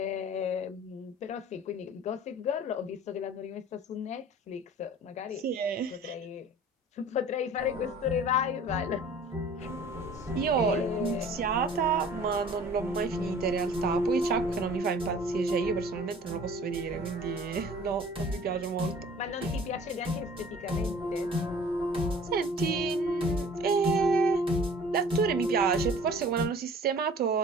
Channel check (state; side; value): normal; both; correlation 0.47